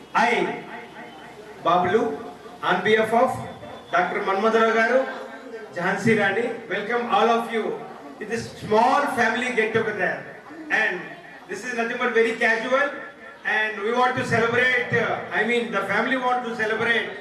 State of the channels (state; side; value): identical; both; correlation 1.00